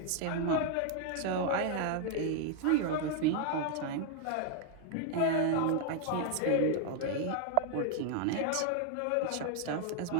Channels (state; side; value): different; both; correlation 0.00